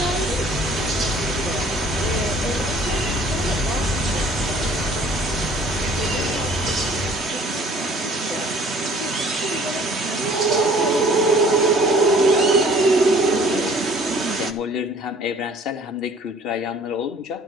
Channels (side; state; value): both; normal; correlation 0.54